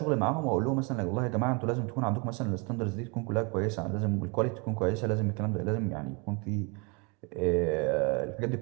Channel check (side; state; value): left; quieter; 31.6 dB